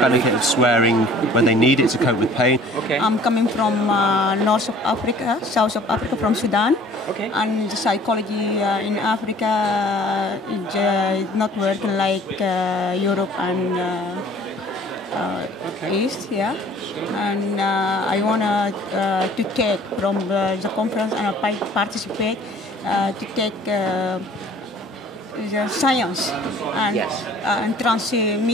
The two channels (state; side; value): normal; both; correlation 0.51